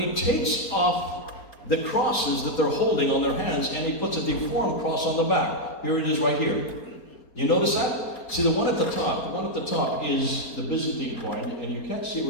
he takes off the crosses that they're holding on their hands, and he puts a deformed cross on the back. Here it is right here. You notice that? See, the one at the top is the Byzantine coin, and you can't see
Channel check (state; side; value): late; right; 4.3 ms